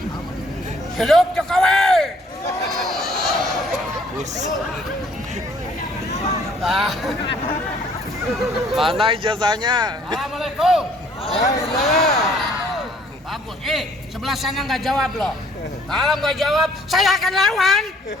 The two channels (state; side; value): normal; both; correlation 0.60